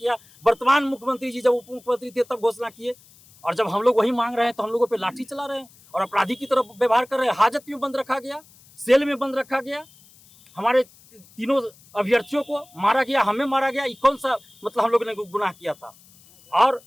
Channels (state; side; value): noise; left; hiss, 26 dB below the sound